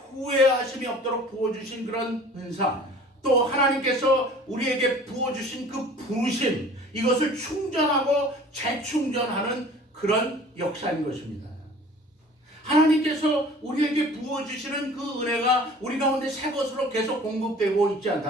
후회하심이 없도록 부어주신 그런 은사, 또 하나님께서 우리에게 부어주신 그 부르심, 이것을 충전하고 재충전하는 그런 역사인 것입니다. 하나님께서 우리에게 부어주시는 그 은혜가 우리 가운데 새 것으로 계속 공급되고 있지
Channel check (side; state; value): both; normal; correlation 0.47